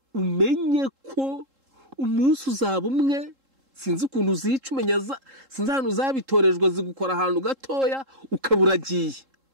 umenye ko umunsi uzaba umwe. Sinzi ukuntu uzica umenya sinzi ahantu uzabitorejwe zigukora ahantu gatoya ukaburagiye.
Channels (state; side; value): late; left; 3.7 ms